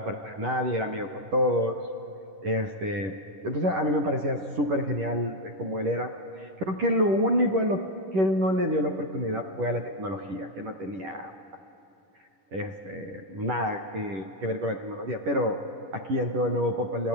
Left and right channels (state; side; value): late; left; 10 ms